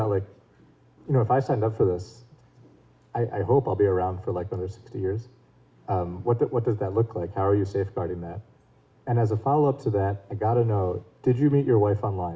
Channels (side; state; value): both; identical; correlation 1.00